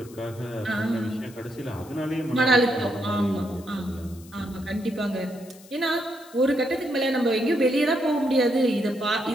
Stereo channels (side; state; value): left; noise; hiss, 23 dB below the sound